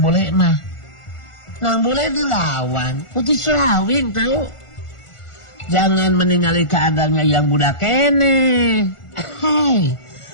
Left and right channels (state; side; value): late; right; 1.4 ms